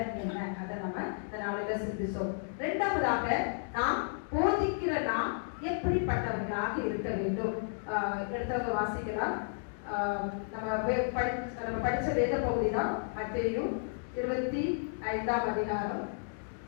என்ன, அதை நம்ம இந்த நாளில சிந்திச்சோம். இரண்டாவதாக நாம் போதிக்கிற நாம் எப்படிப்பட்டவர்களாக இருக்க வேண்டும். எடுத்தவங்க வாசிக்கலாம். நம்ம படிச்ச வேத பகுதி தான் மத்தேயு 25ஆம் அதிகாரம்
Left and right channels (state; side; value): silent; right; digital silence